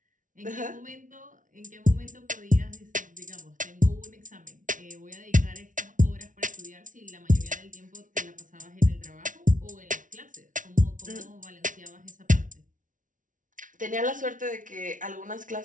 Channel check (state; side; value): late; left; 0.38 ms